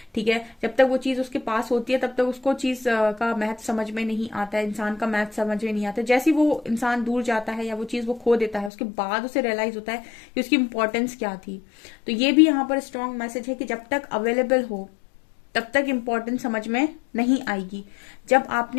ठीक है, जब तक वो चीज उसके पास होती है तब तक उसको चीज का महत्व समझ में नहीं आता है, इंसान का महत्व समझ में नहीं आता। जैसे ही वो इंसान दूर जाता है या वो चीज वो खो देता है, उसके बाद उसे रियलाइज होता है कि उसकी इंपॉर्टेंस क्या थी। तो ये भी यहाँ पर स्ट्रॉन्ग मैसेज है कि जब तक अवेलेबल हो, तब तक इम्पोर्टेंस समझ में नहीं आएगी। जब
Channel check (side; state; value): right; drops out; at 8.7 s